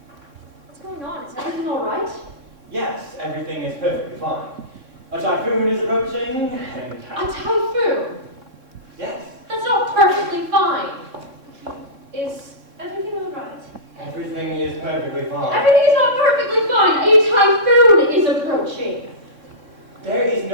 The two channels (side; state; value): left; late; 3.7 ms